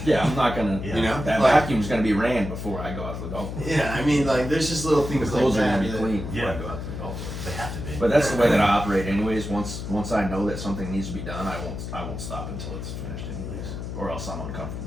Yeah, I'm not gonna. Yeah. You know, That like, vacuum's gonna be ran before I go out to the golf course. yeah. I mean, like, there's just little The things like clothes are that. gonna be that- clean before Yeah. I go out to the golf course. They have to be. But that's the way that I operate, anyways. Once I know that something needs to be done, I won't stop until it's finished, anyways, or else I'm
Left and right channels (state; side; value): noise; left; hum, 7 dB below the sound